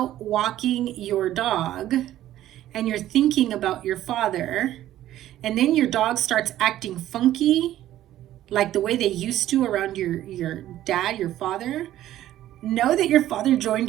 walking your dog and you're thinking about your father, and then your dog starts acting funky, like the way they used to around your dad, your father, know that your father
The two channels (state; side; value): quieter; left; 13.3 dB